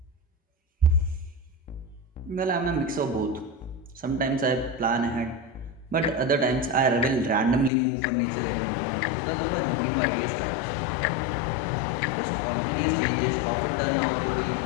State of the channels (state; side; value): drops out; right; at 7.7 s